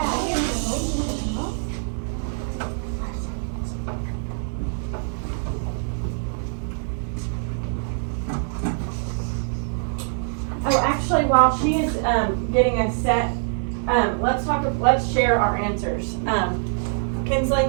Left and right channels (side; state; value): left; silent; 63 dB below the other